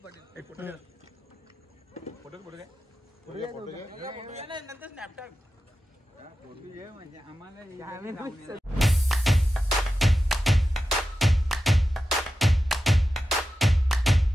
Hey, photo घे. Photo घे. नाही नंतर स्नॅपचॅट. फोटो घे म्हणजे आम्हाला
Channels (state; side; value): normal; both; correlation 0.92